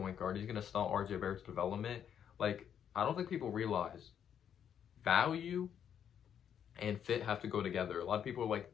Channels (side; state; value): right; quieter; 8.8 dB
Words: guard. He's going to stunt RJ Barrett's development. Like, I don't think people realize value and fit have to go together. A lot of people are